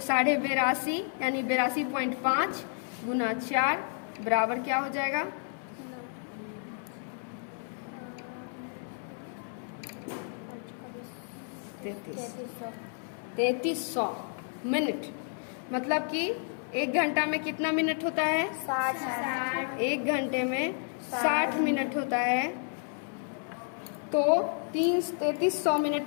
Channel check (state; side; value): silent; right; 57 dB below the other